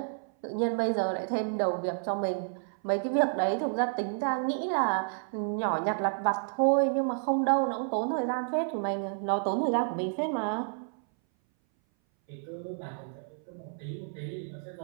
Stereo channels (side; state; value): left; silent; 58 dB below the other